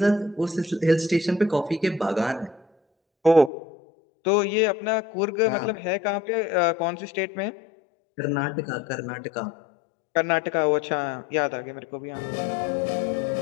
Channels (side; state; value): right; drops out; at 3.5 s